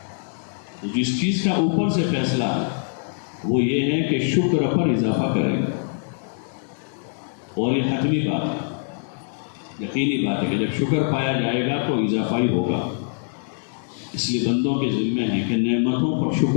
تو جس چیز کا اوپر سے فیصلہ ہے وہ یہ ہے کہ شکر پر اضافہ کرے گا، اور یہ حتمی بات ہے، یقینی بات ہے کہ جب شکر پایا جائے گا تو اضافہ ہی ہوگا۔ اس لیے بندوں کے ذمہ ہے کہ نعمتوں پر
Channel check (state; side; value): silent; right; digital silence